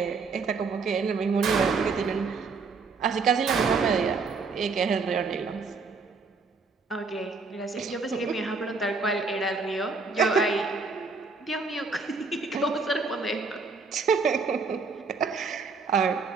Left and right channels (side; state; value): left; quieter; 4.5 dB